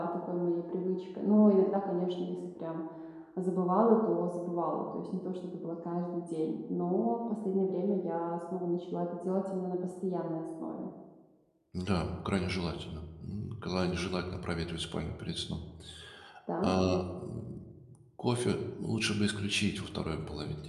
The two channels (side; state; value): both; identical; correlation 1.00